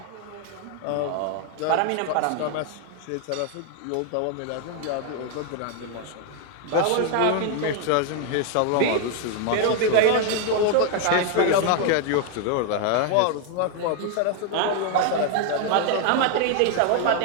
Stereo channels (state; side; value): different; both; correlation 0.00